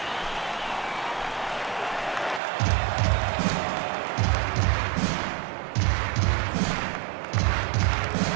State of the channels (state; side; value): drops out; left; at 2.4 s